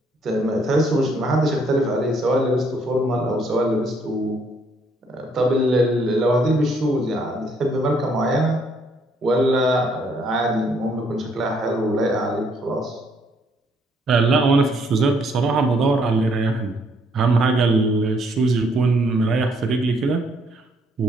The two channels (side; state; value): both; normal; correlation 0.68